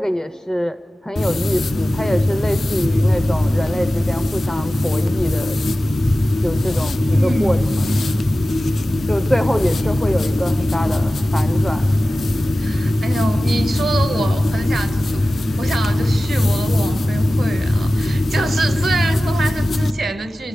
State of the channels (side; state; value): both; normal; correlation 0.96